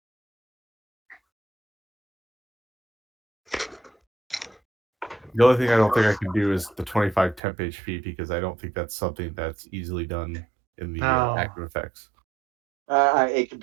The only thing I don't think I can do is the 25 temp HP because I don't think that's something that's easily done in the No. active effects. It could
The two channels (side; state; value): left; drops out; at 7.4 s